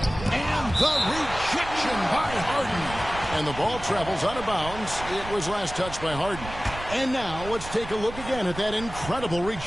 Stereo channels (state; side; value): noise; right; rumble, 12 dB below the sound